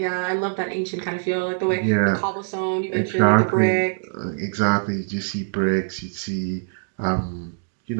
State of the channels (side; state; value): left; silent; digital silence